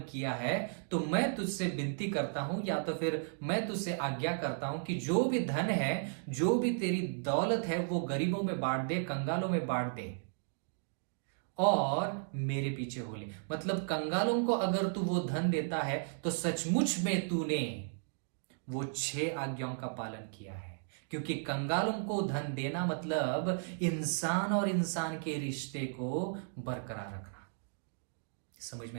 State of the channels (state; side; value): silent; left; digital silence